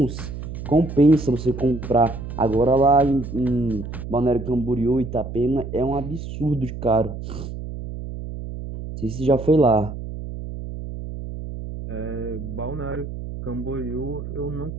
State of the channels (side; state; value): right; noise; hum, 8 dB below the sound